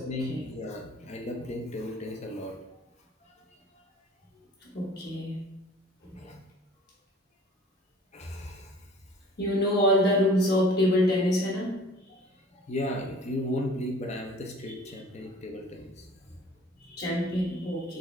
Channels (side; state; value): both; normal; correlation 0.48